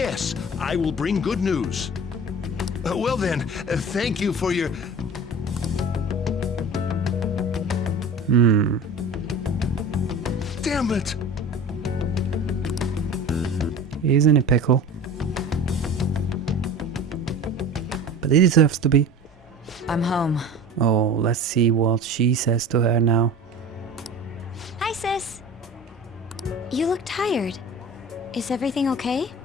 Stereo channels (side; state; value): both; normal; correlation 0.37